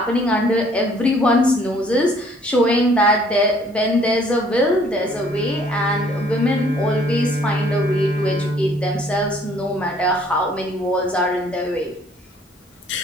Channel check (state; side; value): normal; both; correlation 0.60